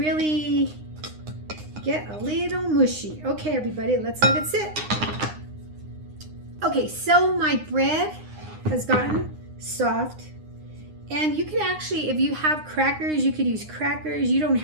get a little mushy. Okay, everybody, let's let it sit. Okay, so my bread has gotten soft, and you can actually, if you have crackers, you could use crackers. You don't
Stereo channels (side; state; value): left; late; 9.7 ms